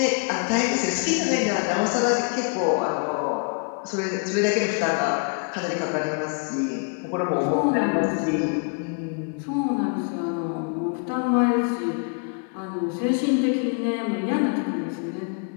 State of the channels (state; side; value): quieter; right; 38.4 dB